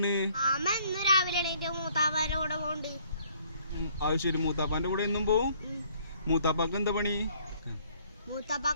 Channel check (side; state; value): both; inverted; correlation -0.61